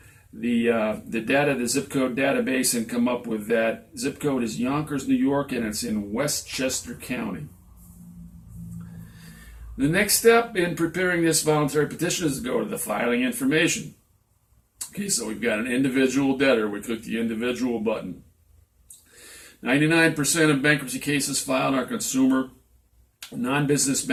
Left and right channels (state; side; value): identical; both; correlation 1.00